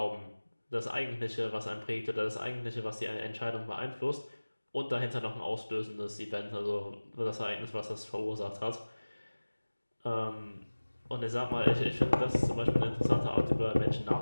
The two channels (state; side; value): inverted; both; correlation -1.00